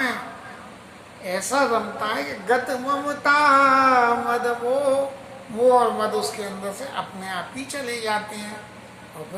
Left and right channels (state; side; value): identical; both; correlation 1.00